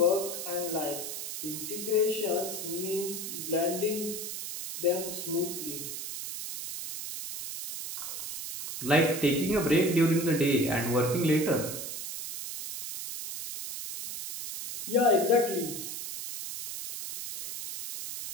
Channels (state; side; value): noise; right; hiss, 7 dB below the sound